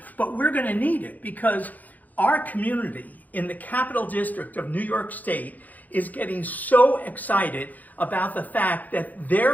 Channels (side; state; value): right; late; 0.081 ms